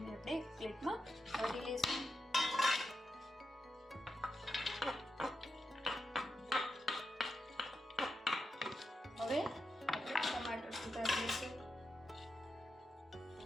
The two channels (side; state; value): both; normal; correlation 0.87